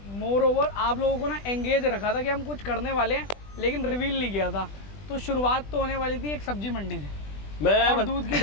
मोर ओवर आप लोगों को ना एंगेज रखा था कि हम कुछ करने वाले हैं, लेकिन रिवील नहीं किया था। तो शुरुआत तो होने वाली थी एक सब्जी मंडी से और दूध की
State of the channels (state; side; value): late; right; 20 ms